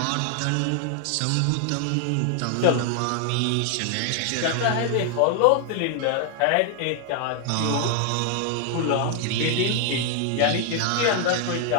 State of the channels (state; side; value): different; both; correlation 0.00